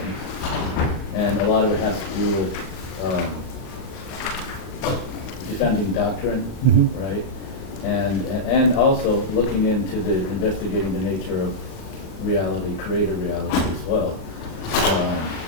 and a lot of it has to do with defending doctrine, right? And also looking into investigating the nature of reality, creator reality as well.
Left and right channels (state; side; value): late; right; 38 ms